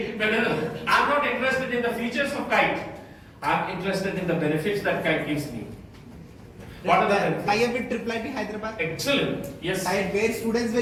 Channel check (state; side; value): identical; both; correlation 1.00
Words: I'm not interested in the features of Kite. I'm interested in the benefits that Kite gives me. What are the benefits? I have with Triple Hyderabad. Excellent. Yes. Where students